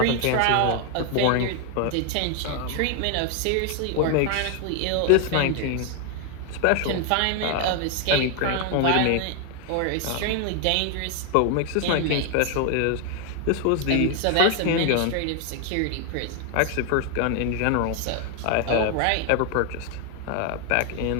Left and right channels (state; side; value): different; both; correlation 0.00